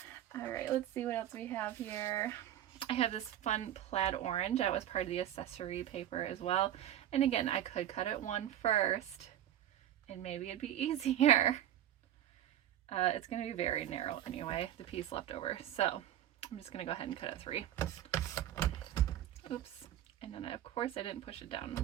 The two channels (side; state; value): left; quieter; 11.6 dB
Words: right, let's see what else we have here. I have this fun plaid orange. That was part of the accessory paper as well. And again, I could cut it 1 first, and maybe it'd be easier. It's going to be very narrow anyway, the piece left over. So I'm just going to go ahead and cut it 3. Oops. And then, of course, I didn't push it down.